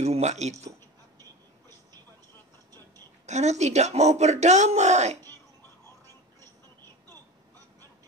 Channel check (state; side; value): normal; both; correlation 0.30